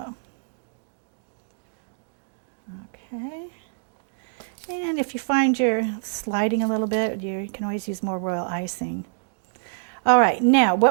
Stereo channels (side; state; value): left; silent; digital silence